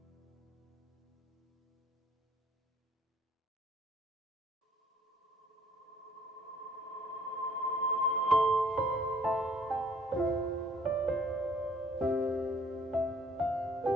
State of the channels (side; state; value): both; normal; correlation 0.59